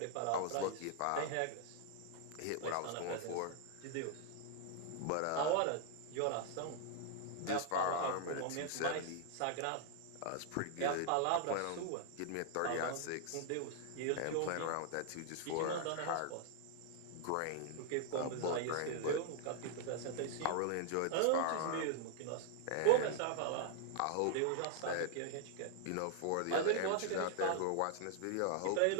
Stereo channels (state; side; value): different; both; correlation -0.01